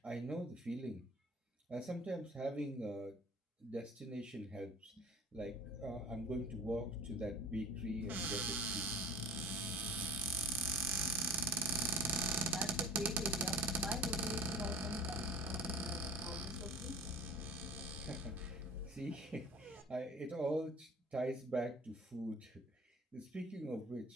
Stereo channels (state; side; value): normal; both; correlation 0.44